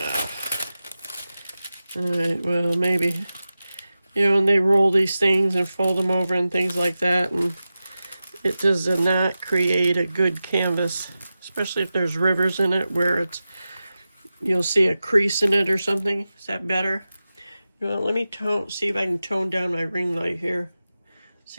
Alright, well, maybe, and they roll these things and fold them over and things like that, and it does not create a good canvas, especially if there's rivers in it where you'll see a crease in it or something. Is that better? Let me see if I can tone down my ring light here.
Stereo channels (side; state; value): both; inverted; correlation -0.94